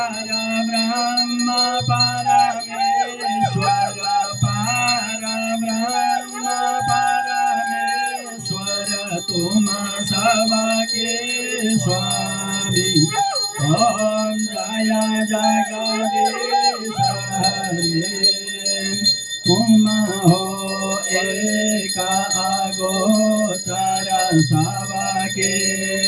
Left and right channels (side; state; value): both; identical; correlation 1.00